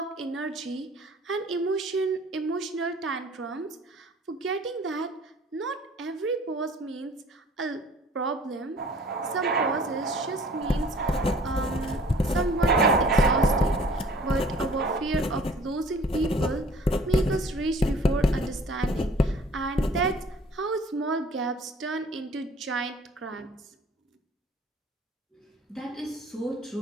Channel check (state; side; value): normal; both; correlation 0.52